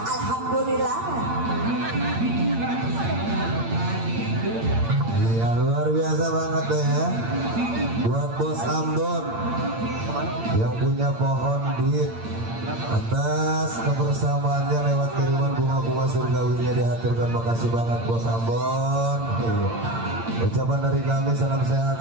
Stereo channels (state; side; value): late; left; 8.8 ms